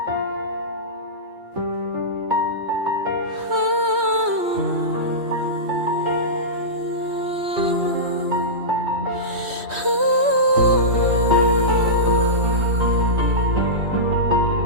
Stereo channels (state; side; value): late; left; 3.1 ms